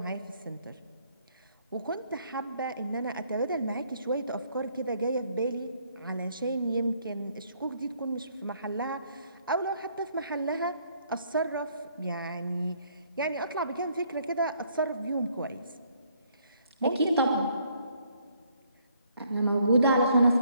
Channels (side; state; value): both; inverted; correlation -0.67